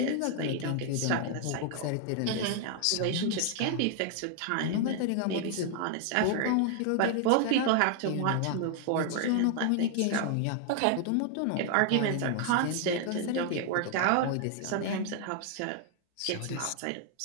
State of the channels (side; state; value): both; different; correlation 0.00